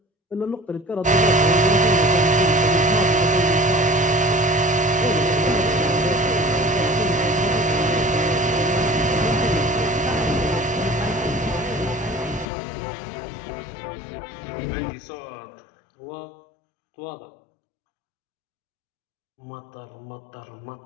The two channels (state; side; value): drops out; right; at 12.5 s